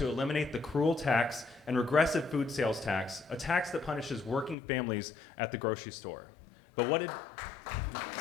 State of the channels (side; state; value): right; drops out; at 4.5 s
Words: eliminate the cruel tax and regressive food sales tax, a tax that punishes working families at the grocery store. But what did...